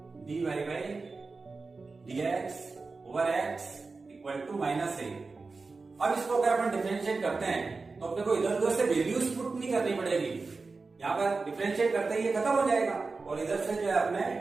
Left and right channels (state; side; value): quieter; left; 4.0 dB